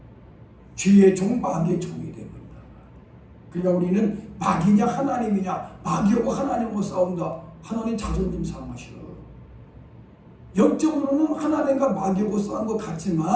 죄의 종, 마귀의 종이 되어버린다. 그러니까 우리는 마귀냐 하나님이냐, 마귀하고 하나님하고 싸운다. 하나님 자존심 상하셔. 영적으로는 하나님과 마귀하고 싸운 것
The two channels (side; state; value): both; identical; correlation 1.00